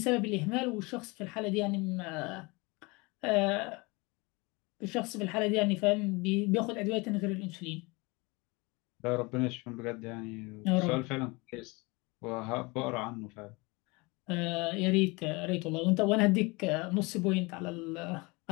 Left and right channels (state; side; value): quieter; right; 26.0 dB